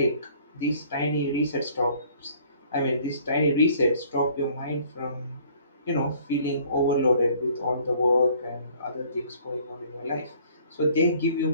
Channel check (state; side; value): inverted; both; correlation -0.57